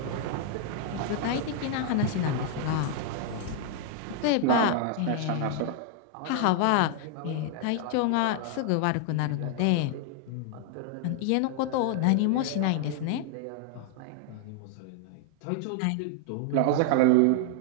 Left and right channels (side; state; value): both; different; correlation 0.00